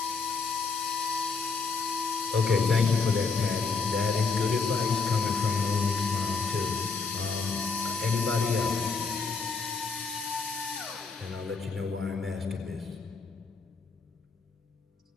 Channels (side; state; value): right; quieter; 4.6 dB